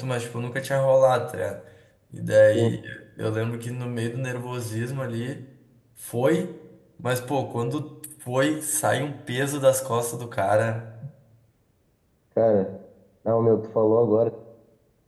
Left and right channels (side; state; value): both; identical; correlation 1.00